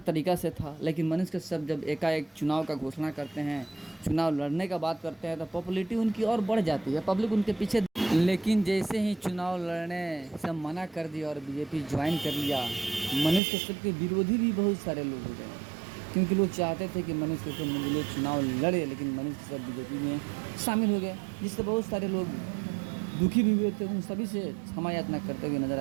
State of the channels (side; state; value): left; drops out; at 13.4 s